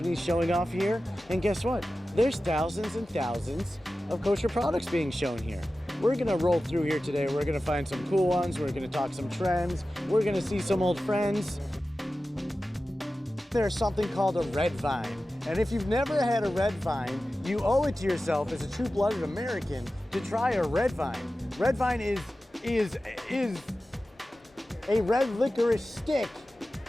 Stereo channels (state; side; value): normal; both; correlation 0.94